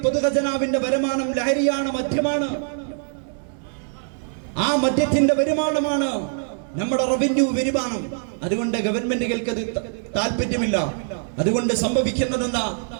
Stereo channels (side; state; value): left; silent; 63 dB below the other